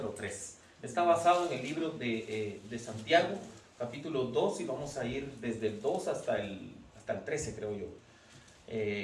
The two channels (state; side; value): identical; both; correlation 1.00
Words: 3. Está basado en el libro de Santiago, capítulo 2, y vamos a ir desde el 2 hasta el 13, creo yo.